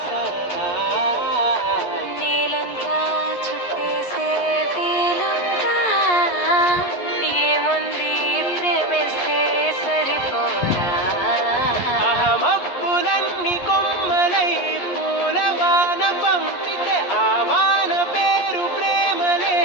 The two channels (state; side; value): late; right; 11 ms